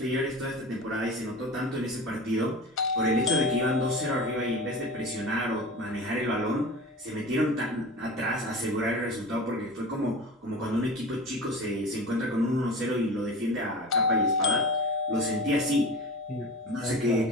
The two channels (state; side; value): normal; both; correlation 0.33